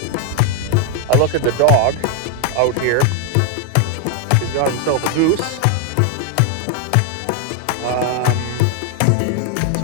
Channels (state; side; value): different; both; correlation 0.00